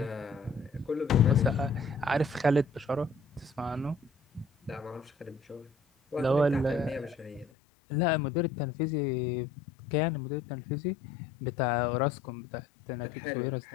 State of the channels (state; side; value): drops out; right; at 7.5 s